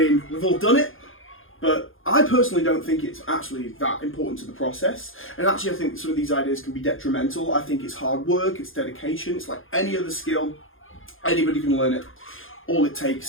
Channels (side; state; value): right; late; 0.59 ms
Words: we've all done it, but I personally don't think it's actually that important to the process. And actually I think some of these ideas can be detrimental. I think it's hard work, it's dedication, it's like any other skill. Anybody can learn it. All it